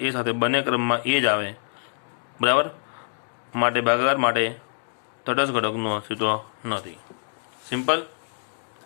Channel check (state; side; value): silent; right; digital silence